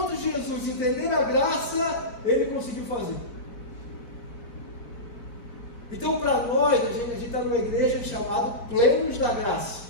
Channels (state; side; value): late; right; 4.7 ms